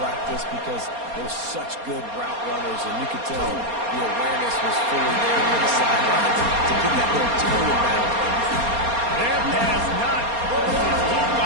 because they're such good route runners, and you could tell the awareness was fully there near the sideline to get that little toe down. Their pass not close. He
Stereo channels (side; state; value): left; late; 4.3 ms